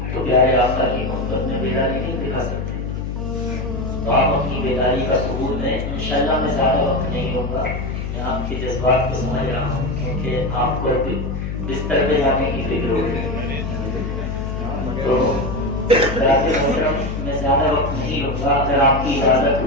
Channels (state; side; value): noise; left; hum, 4 dB below the sound